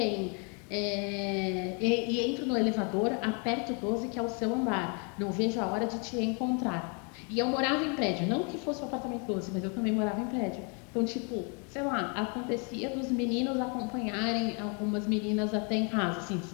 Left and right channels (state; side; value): quieter; right; 36.5 dB